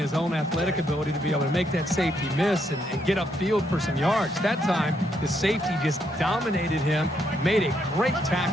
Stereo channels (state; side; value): normal; both; correlation 0.76